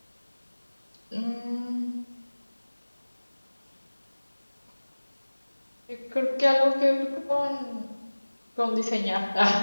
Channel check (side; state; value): both; inverted; correlation -1.00